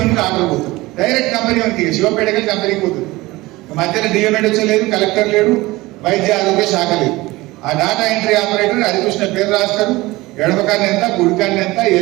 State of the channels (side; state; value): left; quieter; 20.1 dB